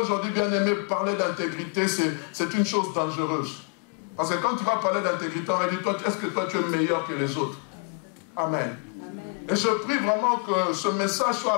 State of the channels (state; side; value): quieter; right; 36.6 dB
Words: aujourd'hui, bien aimé, parler d'intégrité, c'est une chose dangereuse. Parce que quand tu vas parler d'intégrité, on va dire, est-ce que toi tu es meilleur que les autres? Amen. Et je prie vraiment que ce message soit